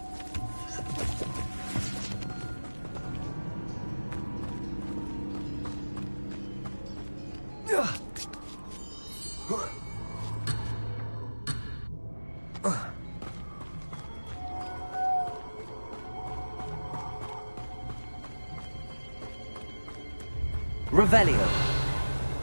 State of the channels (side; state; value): both; inverted; correlation -1.00